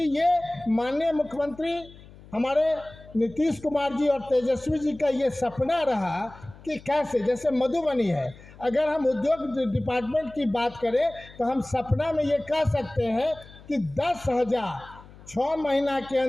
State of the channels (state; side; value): noise; left; hum, 21 dB below the sound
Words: ये माननीय मुख्यमंत्री हमारे नीतीश कुमार जी और तेजस्वी जी का ये सपना रहा कि कैसे, जैसे मधुबनी है, अगर हम उद्योग डिपार्टमेंट की बात करें तो हम सपना में ये कह सकते हैं कि 10,000 6 महीना के